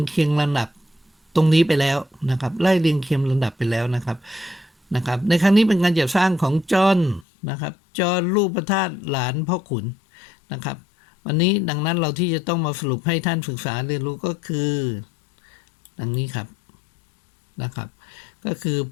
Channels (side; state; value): right; drops out; at 7.2 s